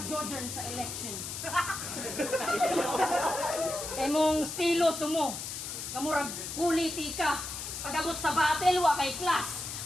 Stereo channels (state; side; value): noise; left; hiss, 6 dB below the sound